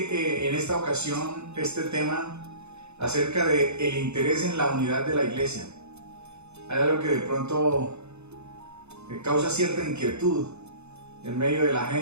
en esta ocasión este tema acerca del interés en la unidad de la iglesia. Hay algo que de pronto causa cierta inquietud en medio de la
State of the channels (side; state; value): left; late; 0.81 ms